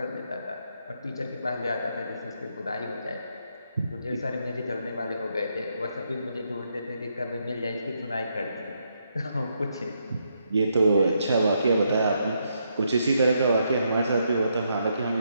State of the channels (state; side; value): inverted; both; correlation -0.78